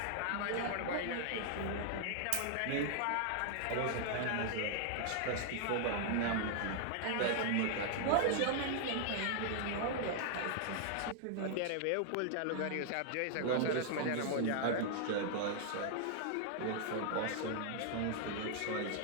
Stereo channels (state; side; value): different; both; correlation 0.00